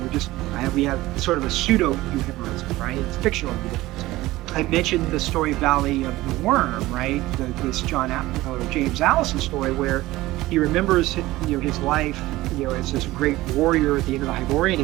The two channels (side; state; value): left; quieter; 17.9 dB